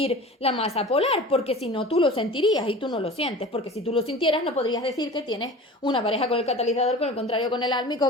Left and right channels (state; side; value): normal; both; correlation 0.38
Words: la masa polar, porque si no tú lo sentirías y tú no lo sientes, porque si tú lo sintieras no podrías decir que tienes una pareja con el catalizador, con el contrario con el